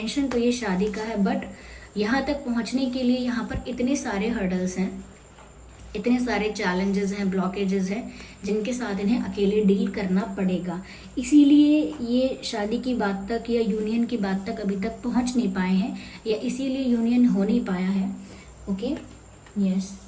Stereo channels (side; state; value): both; identical; correlation 1.00